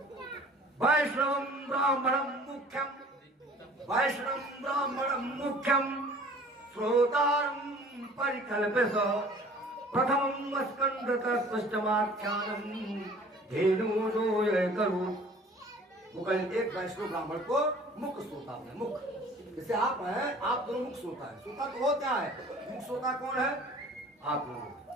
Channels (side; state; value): both; normal; correlation 0.49